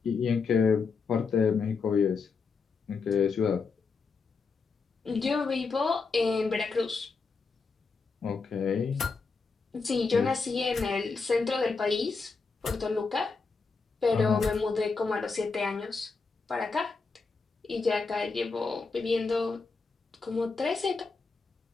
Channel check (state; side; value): quieter; right; 4.6 dB